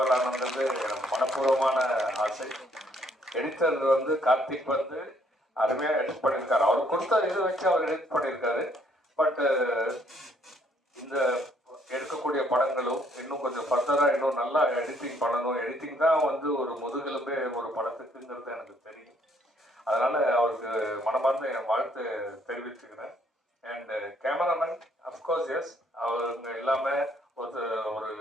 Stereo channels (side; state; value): both; normal; correlation 0.67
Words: ஆனது எனக்கு மனப்பூர்வமான ஆசை. எடிட்டர் வந்து கார்த்திக் வந்து அருமையா எடிட் பண்ணியிருக்காரு. அவர் கொடுத்த இது வச்சு அவர் எடிட் பண்ணியிருக்காரு. பட் இந்த எடுக்கக்கூடிய படங்களும் இன்னும் கொஞ்சம் ஃபர்தரா இன்னும் நல்லா எடிட்டிங் பண்ணணும். எடிட்டிங் தான் வந்து ஒரு முதுகெலும்பே ஒரு படத்துக்குங்கிறது எனக்கு தெரியும். அதனால அவருக்கு மனமார்ந்த என் வாழ்த்து தெரிவிச்சுக்கிறேன். அண்ட் கேமராமேன் அஃப்கோர்ஸ் எஸ், அவங்க இல்லாமல் ஒரு